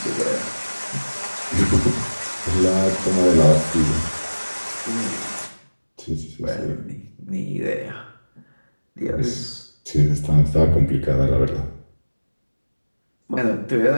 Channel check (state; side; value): inverted; both; correlation -1.00